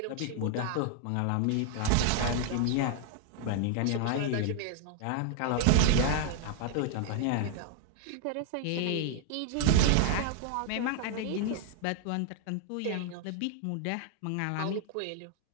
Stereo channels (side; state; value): both; different; correlation 0.00